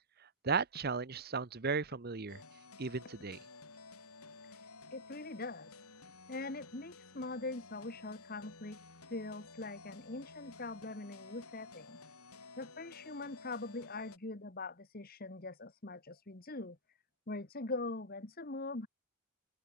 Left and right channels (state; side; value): normal; both; correlation -0.06